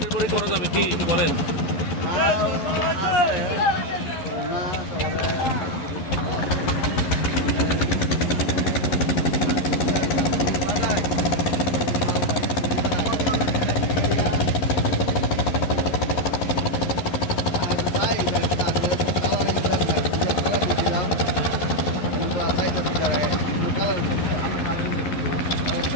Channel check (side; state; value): right; late; 11 ms